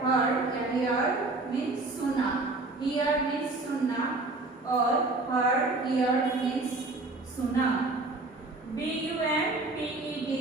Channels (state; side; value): quieter; left; 3.2 dB